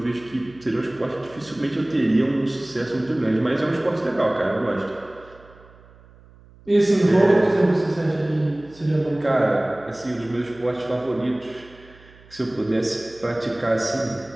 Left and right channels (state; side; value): noise; right; hum, 25 dB below the sound